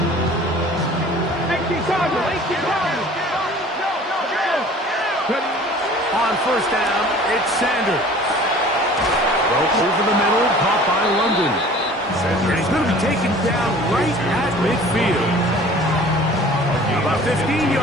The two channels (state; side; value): normal; both; correlation 0.47